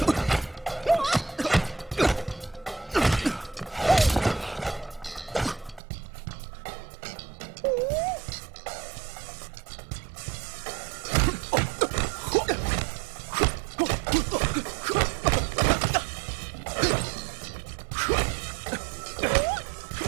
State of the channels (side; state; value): left; drops out; at 5.8 s